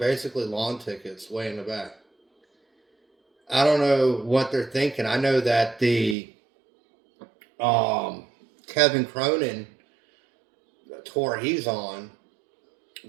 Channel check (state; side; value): drops out; left; at 6.2 s